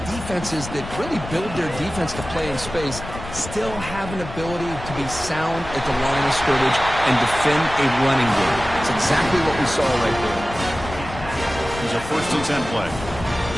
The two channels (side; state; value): left; noise; rumble, 11 dB below the sound